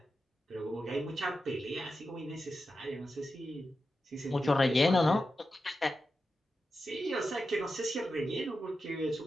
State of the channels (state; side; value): normal; both; correlation 0.90